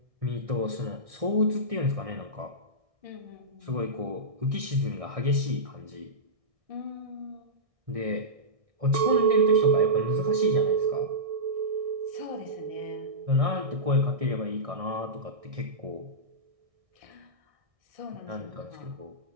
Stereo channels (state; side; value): late; left; 1.6 ms